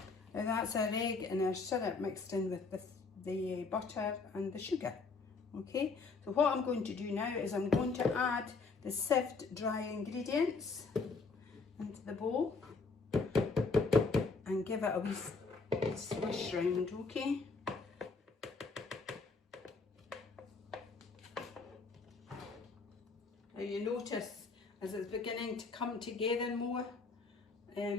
Now that's our egg and our syrup mixed in with the butter and the sugar. Okay, so what I'm going to do now is I'm going to add the sieved dry ingredients into the bowl and give it a wee swish round, okay? Now you notice as it's beginning to come together more,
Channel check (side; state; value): right; quieter; 4.4 dB